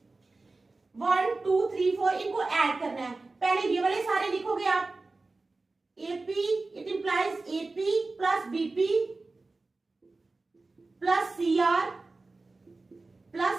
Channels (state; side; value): quieter; left; 3.5 dB